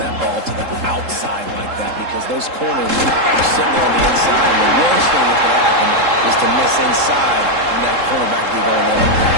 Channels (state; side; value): late; left; 3.7 ms